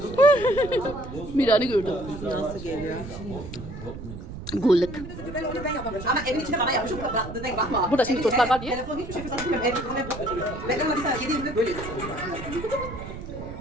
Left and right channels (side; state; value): right; noise; rumble, 11 dB below the sound